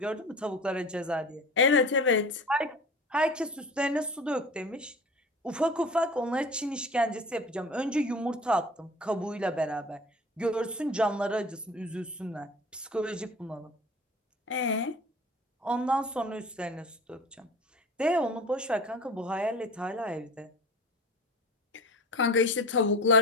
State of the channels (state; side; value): normal; both; correlation 0.38